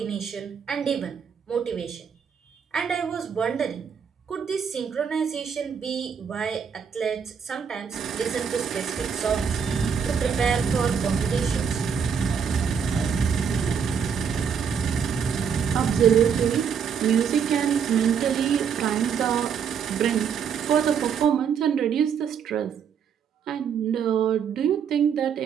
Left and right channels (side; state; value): left; quieter; 7.1 dB